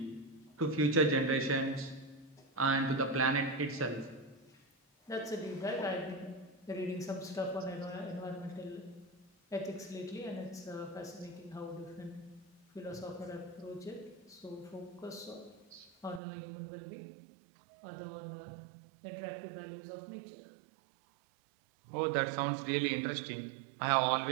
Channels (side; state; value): left; drops out; at 16.2 s